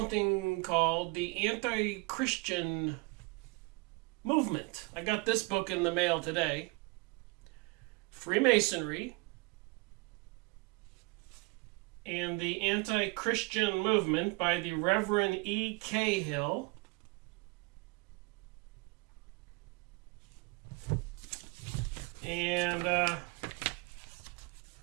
called the anti-Christian movement. I got this book in the mail today. Freemasonry and the Anti-Christian Movement by the Reverend E. Cahill. And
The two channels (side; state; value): left; quieter; 27.9 dB